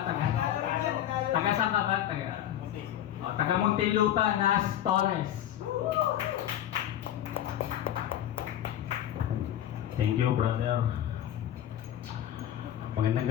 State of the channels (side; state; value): right; quieter; 11.5 dB